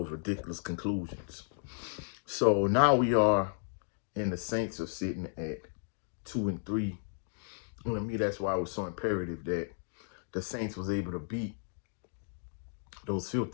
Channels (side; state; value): right; silent; digital silence